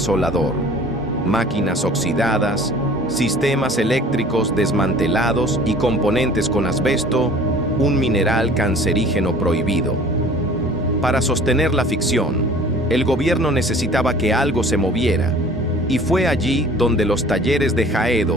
Máquinas oxidadas, sistemas eléctricos desmantelados y componentes con asbesto, un mineral cancerígeno prohibido. Para sostener la ficción, el gobierno necesitaba que algo se moviera, y fue allí donde los talleres de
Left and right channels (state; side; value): normal; both; correlation 0.48